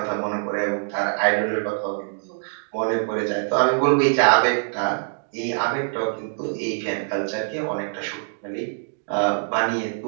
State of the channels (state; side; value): silent; left; digital silence